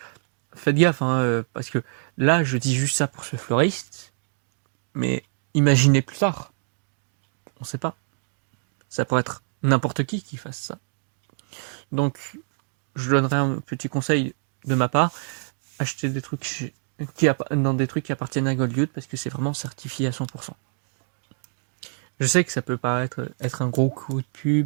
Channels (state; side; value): silent; left; digital silence